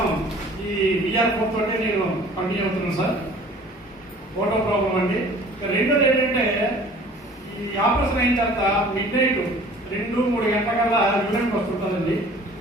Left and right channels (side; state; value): both; normal; correlation 0.49